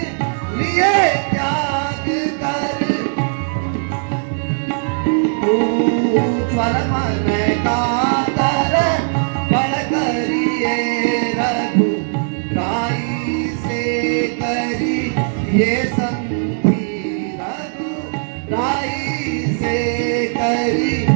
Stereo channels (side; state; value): left; silent; digital silence